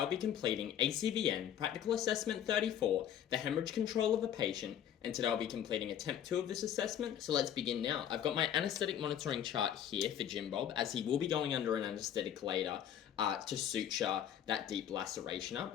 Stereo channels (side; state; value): right; quieter; 10.0 dB